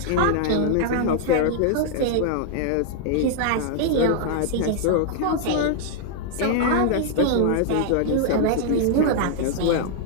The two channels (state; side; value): different; both; correlation -0.01